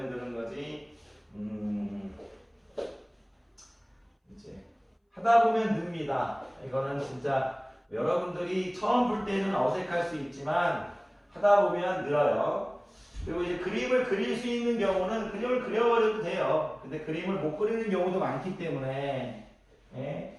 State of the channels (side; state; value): both; identical; correlation 1.00